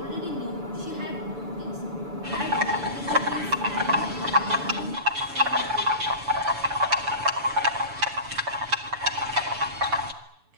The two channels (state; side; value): late; left; 6.9 ms